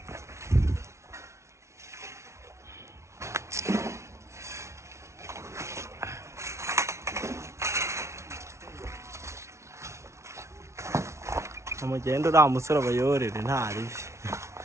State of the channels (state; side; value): late; left; 0.13 ms